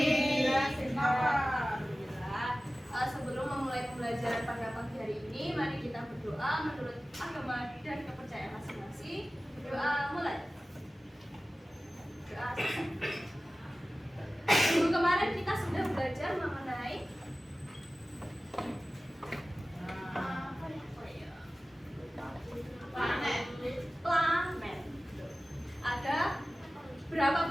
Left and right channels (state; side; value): normal; both; correlation 0.96